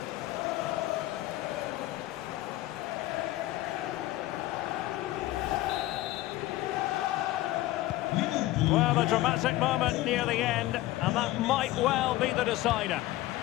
Well, a dramatic moment near the end, and that might well be the decider.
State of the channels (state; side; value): quieter; right; 16.7 dB